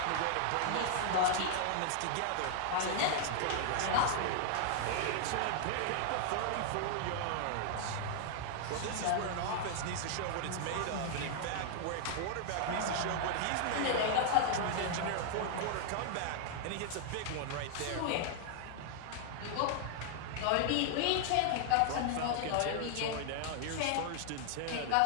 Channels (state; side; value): different; both; correlation -0.01